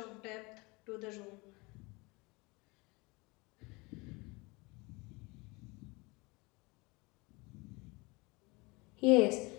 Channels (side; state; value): right; quieter; 26.0 dB